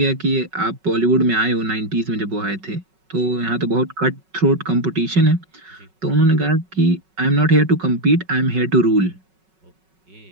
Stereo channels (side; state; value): left; late; 5.4 ms